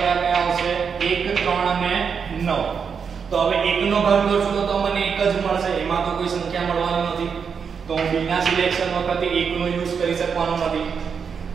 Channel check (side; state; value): left; quieter; 6.3 dB